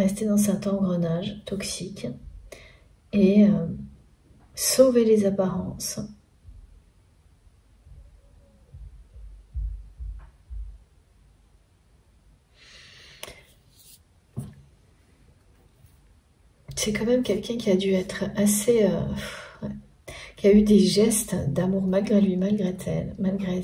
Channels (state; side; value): identical; both; correlation 1.00